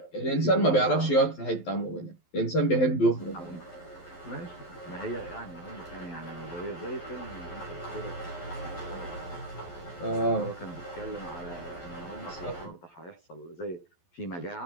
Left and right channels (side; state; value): right; late; 11 ms